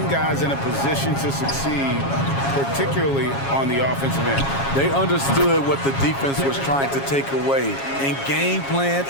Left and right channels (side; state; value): right; late; 7.3 ms